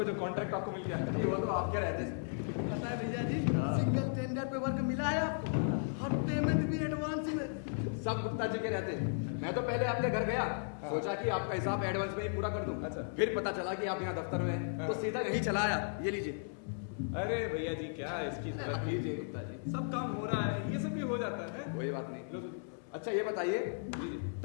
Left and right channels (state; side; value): silent; right; digital silence